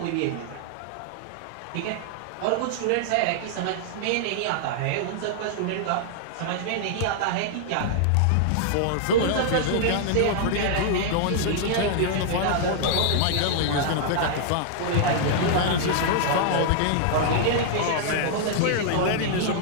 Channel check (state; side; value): different; both; correlation -0.01